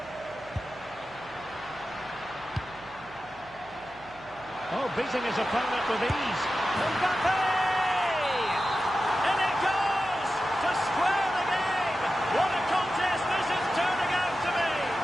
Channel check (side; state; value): right; noise; hum, 25 dB below the sound